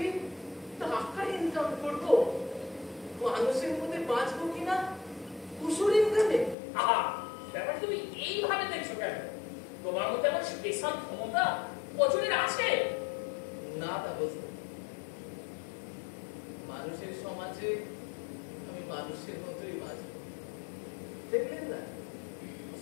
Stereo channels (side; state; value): right; drops out; at 6.6 s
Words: স্পেশাল ক্ষমতা বছরের আছে? না তা বুঝতে মানুষের সমাজে আমি মানুষের মতোই বাঁচব। দেখলেন না